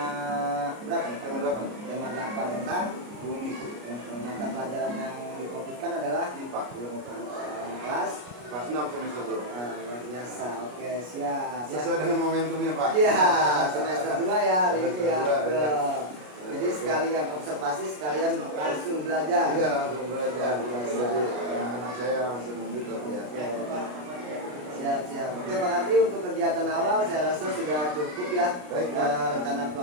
berapa nih? Tema 8. Tema 8 tentang Bumi. mata pelajaran yang difokuskan adalah IPA. Kelas 6 semester 2. luar biasa. Oke, siap. Sesuai dengan momentumnya Pak. Iya, semester 2 ya hari ini ya. Semester 2, ya. Jadi sekalian observasi, sekalian langsung belajar. Iya, langsung belajar. Jadi anak saya langsung membuka ya. Siap. Oke Pak Kardi, untuk kegiatan awal saya rasa sudah cukup ya. Baik, rencana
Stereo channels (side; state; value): left; late; 33 ms